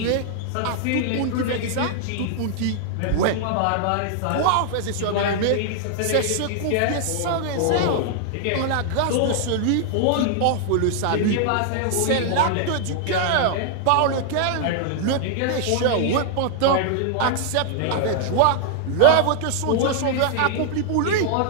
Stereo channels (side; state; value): both; different; correlation -0.01